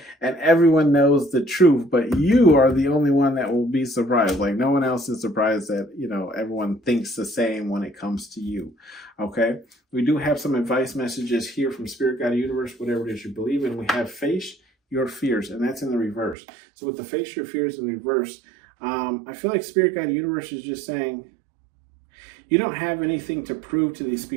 And everyone knows the truth, but you are the only one that will be surprised. Like no one else is surprised that, everyone thinks the same when it comes to you, okay? We do have some advice messages here from Spirit Guide Universe, whatever it is you believe in. We have face your fears, and that's in the reverse. So with the face your fears in reverse, I feel like Spirit Guide Universe is just saying, you don't have anything to prove to these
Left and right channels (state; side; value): drops out; left; at 16.4 s